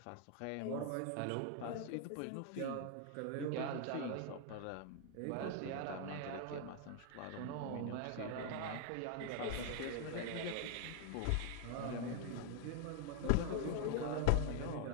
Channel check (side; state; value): both; different; correlation 0.00